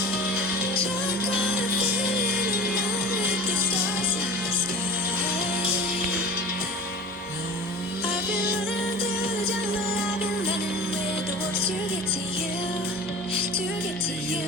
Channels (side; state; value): both; normal; correlation 0.36